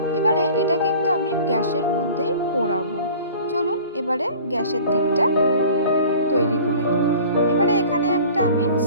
এবারে এটা কিন্তু আমি গ্যাসের মধ্যেই পোড়াবো। চলুন এবারে গ্যাসের দিকটা তৈরি করে নিই। এবারে এখানে একটা আমি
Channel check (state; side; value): inverted; both; correlation -0.44